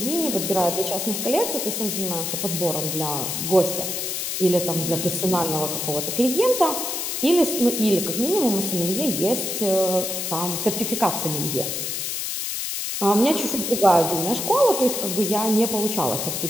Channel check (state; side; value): noise; left; hiss, 3 dB below the sound